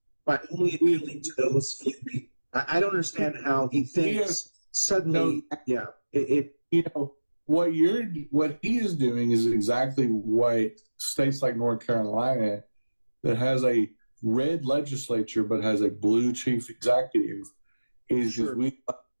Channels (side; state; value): both; inverted; correlation -1.00